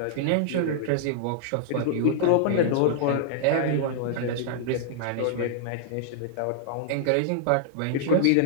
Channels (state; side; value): different; both; correlation -0.01